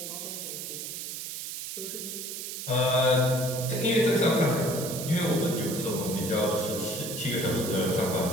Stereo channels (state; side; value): noise; right; hiss, 7 dB below the sound